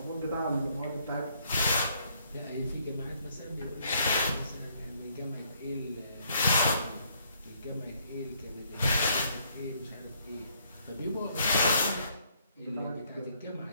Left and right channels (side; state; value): both; inverted; correlation -0.68